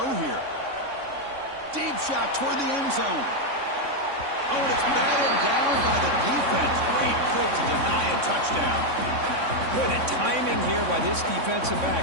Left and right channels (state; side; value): late; left; 3.6 ms